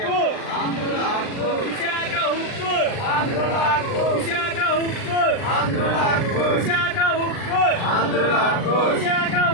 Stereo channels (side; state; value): right; late; 39 ms